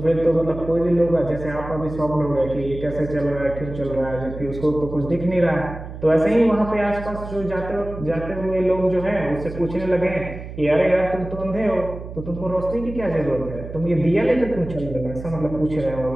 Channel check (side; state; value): right; noise; hum, 11 dB below the sound